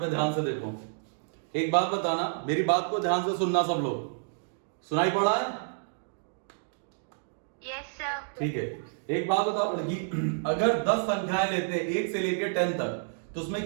ध्यान से देखो। एक बात बताना, मेरी बात को ध्यान से सुनना सब लोग। सुनाई पड़ा है? Yes sir. ठीक है, एक बात बताओ लड़की, अगर 10 संख्याएं लेते हैं 1 से लेकर 10 तक, तो उसमें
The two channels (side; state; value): left; silent; digital silence